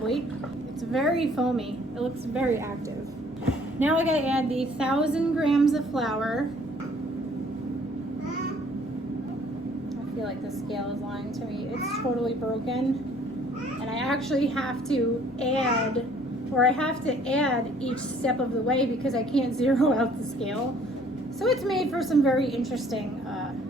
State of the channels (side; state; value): both; normal; correlation 0.58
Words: It's very foamy. It looks very active. Now I gotta add the 1,000 grams of flour. I feel like the scale is lying to me. It's totally broken. And I actually have to add each step of the way because I can't zero out the scale. So it's made for some very interesting